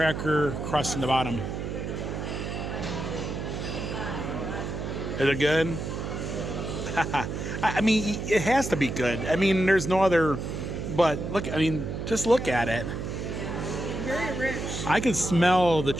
crust in the bottom. Is it good? I mean, it has to be good. I mean, there's no other... But look, I mean, just look at it. Very rich. I can smell the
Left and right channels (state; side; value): noise; right; hum, 5 dB below the sound